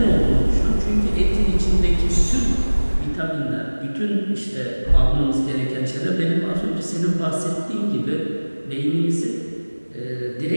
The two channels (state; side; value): inverted; both; correlation -1.00